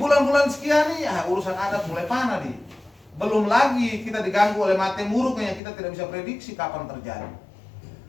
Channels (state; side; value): drops out; right; at 5.6 s